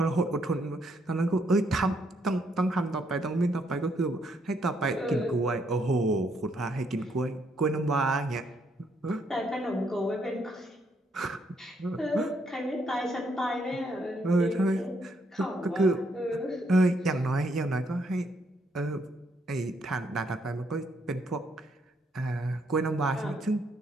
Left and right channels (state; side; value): normal; both; correlation 0.73